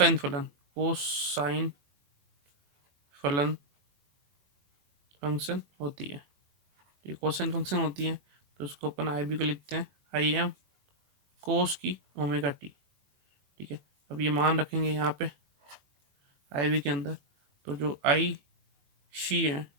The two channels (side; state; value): left; late; 21 ms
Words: फलन। कोसाइन फलन फंक्शन होती है, ये कोसाइन फंक्शन होती है, तो उसको अपन आई बी को लिखते हैं आई एम कोस की ओमेगा टी। ठीक है, अब ये मान रखेंगे यहाँ पे आई बी के अंदर, तो जो आई सी है